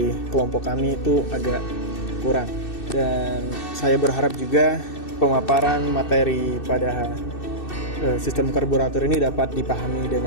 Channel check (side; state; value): right; late; 2.6 ms